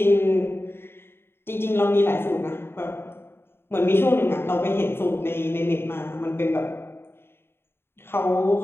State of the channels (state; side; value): late; right; 0.11 ms